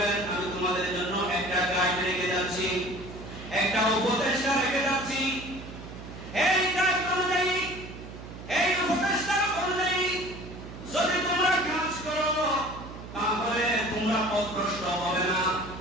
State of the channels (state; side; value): noise; right; hum, 13 dB below the sound